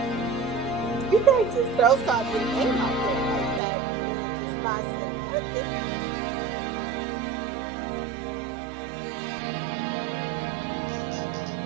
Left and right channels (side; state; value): left; drops out; at 3.6 s